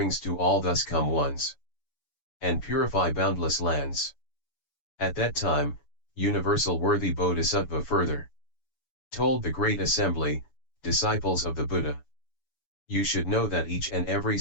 to all thus come ones, and purify boundless lands. At that time, universal worthy Bodhisattva further told the great assembly, disciples of the Buddha. You should know that each and every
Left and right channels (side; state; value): right; late; 7.0 ms